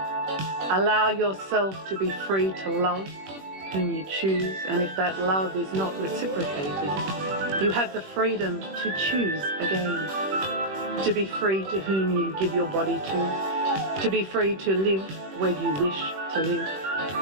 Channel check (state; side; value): late; left; 21 ms